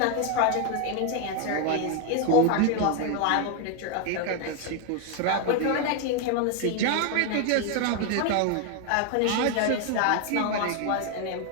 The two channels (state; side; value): different; both; correlation 0.01